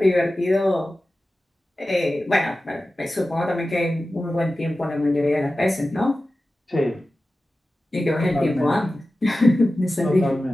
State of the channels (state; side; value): normal; both; correlation 0.95